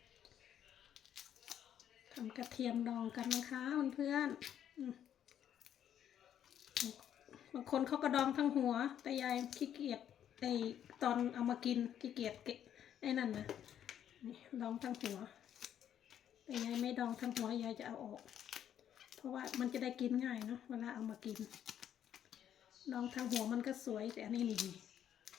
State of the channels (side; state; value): right; quieter; 9.9 dB